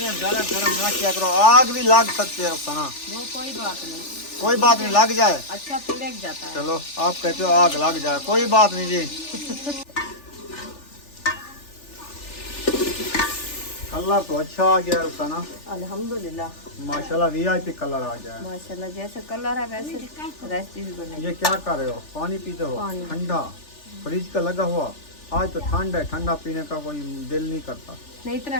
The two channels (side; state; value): right; late; 3.4 ms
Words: ज्यादा गरम ना किया करो, आग भी लग सकती है रुखसाना। वो कोई बात नहीं, कोई बात नहीं, लग जाए। अच्छा पिलक जाता है। चलो आप कहते हो आग लग जाए, कोई बात नहीं जी। कलर तो अच्छा आ गया रुखसाना, अल्हम्दुलिल्लाह माशाल्लाह वीआईपी कलर आ गया है। माशाल्लाह, जैसे कलर है वैसे रेसिपी बनेगी। ये क्या कर रहे हो, पानी पीते हो? पानी। ठंडा फ्रिज का लगा हुआ। आज तो ठंड है, ठंडा पीने का कोई दिल नहीं करता। नहीं इतना